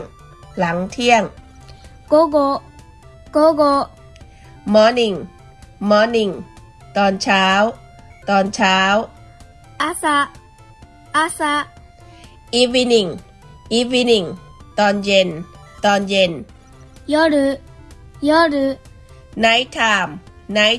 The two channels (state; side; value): identical; both; correlation 1.00